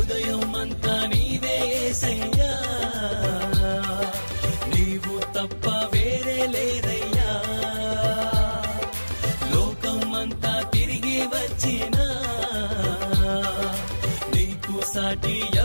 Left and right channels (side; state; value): both; inverted; correlation -1.00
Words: అంతా నీవే యేసయ్యా నీవు తప్ప వేరే లేరయ్యా లోకమంతా తిరిగి వచ్చినా నీకు సాటి